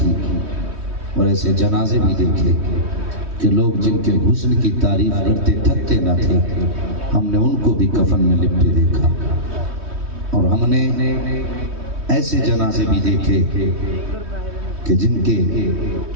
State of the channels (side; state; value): left; late; 3.2 ms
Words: اور ایسے جنازے بھی دیکھے کہ لوگ جن کے حسن کی تعریف کرتے تھکتے نہ تھے، ہم نے ان کو بھی کفن میں لپٹے دیکھا۔ اور ہم نے ایسے جنازے بھی دیکھے کہ جن کے